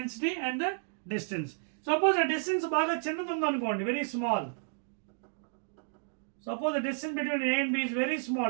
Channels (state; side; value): silent; left; digital silence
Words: and the distance. Suppose the distance బాగా చిన్నది ఉందనుకోండి, very small. Suppose the distance between A and B is very small,